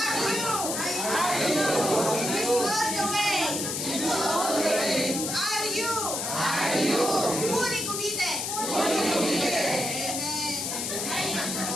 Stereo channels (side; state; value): left; noise; hiss, 2 dB below the sound